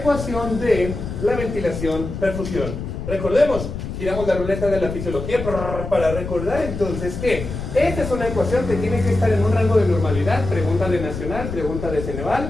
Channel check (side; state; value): left; noise; rumble, 7 dB below the sound